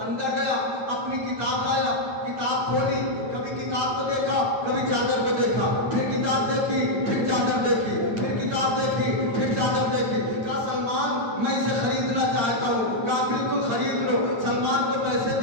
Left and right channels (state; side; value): late; left; 8.7 ms